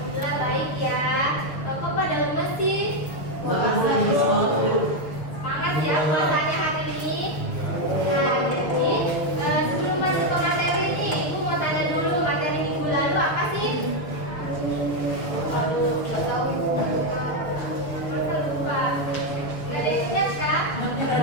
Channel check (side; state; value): right; late; 6.9 ms